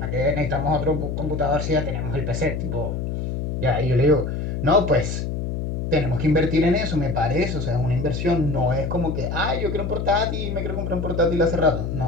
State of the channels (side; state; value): left; noise; hum, 3 dB below the sound